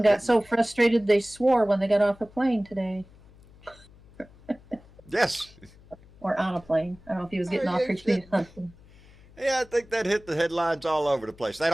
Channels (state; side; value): noise; left; hum, 25 dB below the sound